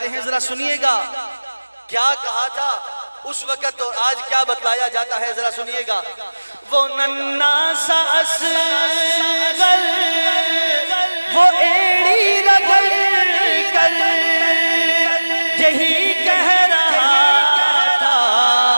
ہیں، ذرا سنیے گا کیا کہا تھا اس وقت اور آج کیا بتلایا جاتا ہے، ذرا سنیے گا۔ وہ ننھا سا اصغر وہ ایڑی رگڑ کر یہی کہہ رہا تھا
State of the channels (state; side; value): inverted; both; correlation -1.00